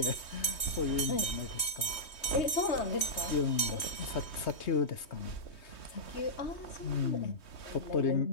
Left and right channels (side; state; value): right; late; 3.2 ms